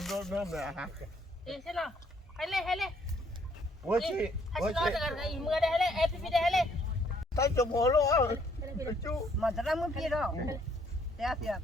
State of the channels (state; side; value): normal; both; correlation 0.66